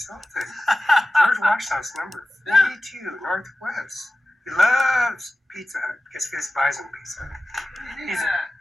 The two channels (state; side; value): normal; both; correlation 0.95